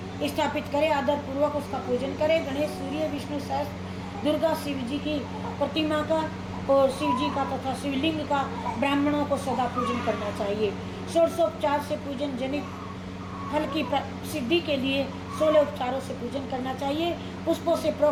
स्थापित करे, आदर पूर्वक उसका पूजन करे। गणेश, सूर्य, विष्णु सहस्त्र, दुर्गा, शिव जी की प्रतिमा का और शिव जी का तथा शिवलिंग का ब्राह्मणों को सदा पूजन करना चाहिए। षोडशोपचार से पूजन जनित फल की सिद्धि के लिए 16 उपचारों से पूजन करना चाहिए। पुष्पों से,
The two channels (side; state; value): both; identical; correlation 1.00